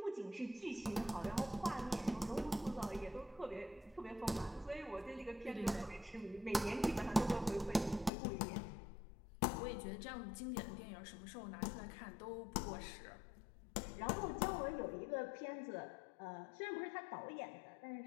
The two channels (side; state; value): right; drops out; at 8.1 s